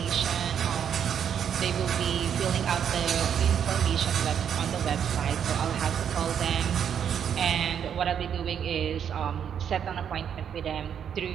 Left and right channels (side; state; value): left; quieter; 8.4 dB